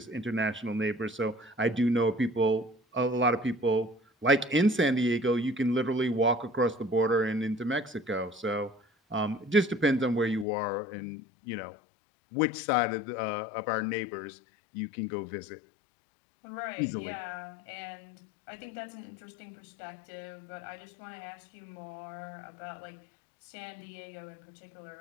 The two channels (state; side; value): drops out; right; at 10.5 s